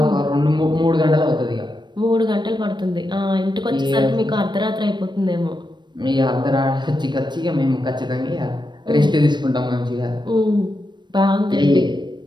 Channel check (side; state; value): left; late; 0.22 ms